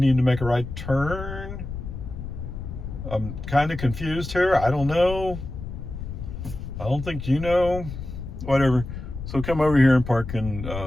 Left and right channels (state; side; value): noise; left; rumble, 8 dB below the sound